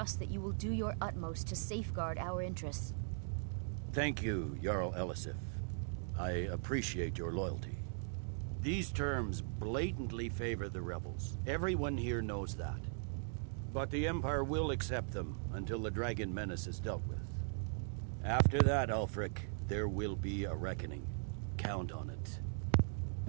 that you will do your utmost to safeguard our interests. Thank you, Jarl Elisif. I appreciate your loyalty. These terms blatantly favor the rebels. Everyone here knows that. But the Empire will accept them until the dragon menace is dealt with. After that, Ulfric, there will be a reckoning. Count on it.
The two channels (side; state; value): left; silent; digital silence